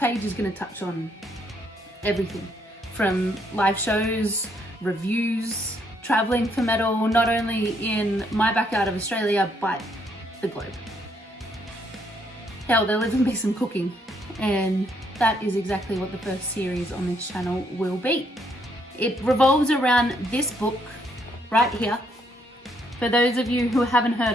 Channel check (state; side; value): normal; both; correlation 0.72